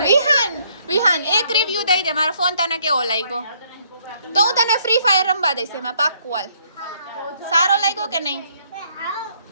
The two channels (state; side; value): inverted; both; correlation -0.67